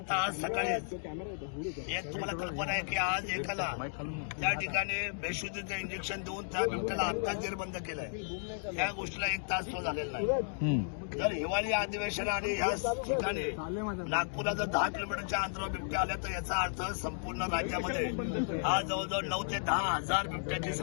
आज सकाळी एक तुम्हाला कल्पना आहे की आज एकाला त्या ठिकाणी बेशुद्धीचं इंजेक्शन देऊन त्या बिबट्याला आत्ताच जेरबंद केलंय. या गोष्टीला 1 तास तो झालेला नाही. जर हिवाळी अधिवेशन आणि ह्या ठिकाणी नागपूरला जर 10 किलोमीटरच्या अंतरावर बिबट्या आल्या तर याचा अर्थ संपूर्ण राज्यामध्ये आज जवळजवळ 9 ते 10 हजार बिबट्याची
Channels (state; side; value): silent; right; digital silence